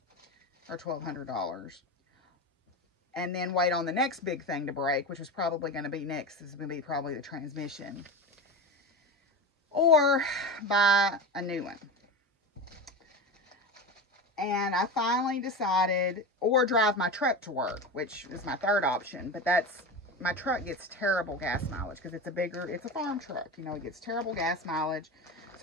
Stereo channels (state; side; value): normal; both; correlation 0.24